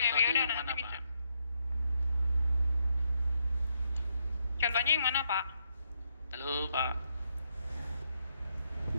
udah nanti bisa. Contohnya yang mana Pak? Halo Pak.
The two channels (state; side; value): inverted; both; correlation -0.78